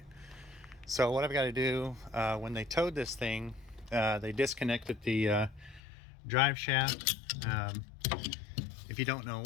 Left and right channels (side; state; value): right; drops out; at 5.8 s